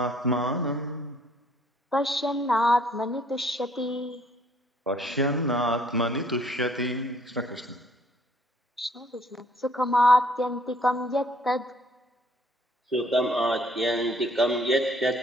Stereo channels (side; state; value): both; normal; correlation 0.62